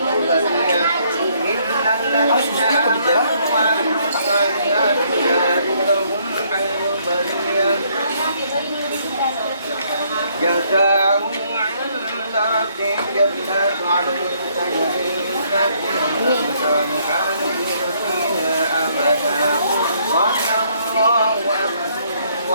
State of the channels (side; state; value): both; inverted; correlation -0.68